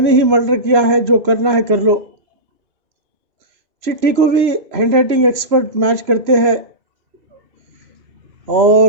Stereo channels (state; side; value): late; left; 3.0 ms